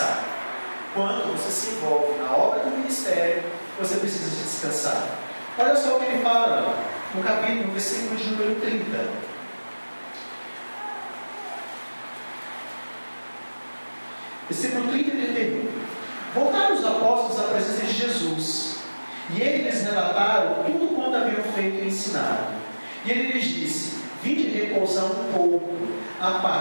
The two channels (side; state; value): both; inverted; correlation -1.00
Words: Quando você se envolve na obra do ministério, você precisa descansar. Olha só o que ele fala no versículo de número 30. Versículo 30 e 31. Voltaram os apóstolos à presença de Jesus, e eles relataram tudo quanto haviam feito e ensinado. E ele lhes disse: vinde repousar um pouco à